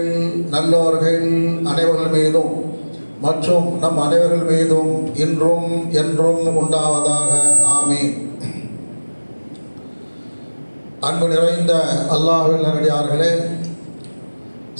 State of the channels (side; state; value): both; inverted; correlation -1.00